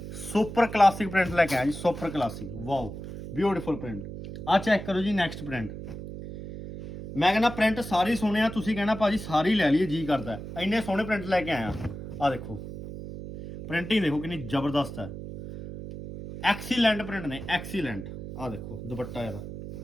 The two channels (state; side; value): noise; right; hum, 10 dB below the sound